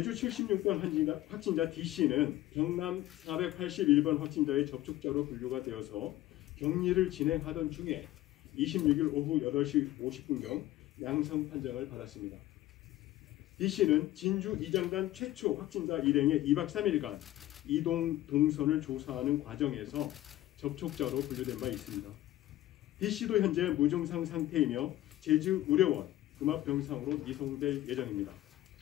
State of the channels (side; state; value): right; quieter; 15.1 dB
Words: 76번 확진자 D씨는 경남 481번 확진자의 접촉자로 분류가 되어서 격리를 진행하던 중에 26일 오후 8시 50분경 양성 판정을 받았습니다. D씨는 진주 이장단 최초 확진자 일행의 2박 3일간 이동 동선을 조사하는 과정에서 접촉자로 분류된 바 있습니다. D씨도 현재 무증상 상태이며 제주의료원 음압병상으로 이송될 예정입니다.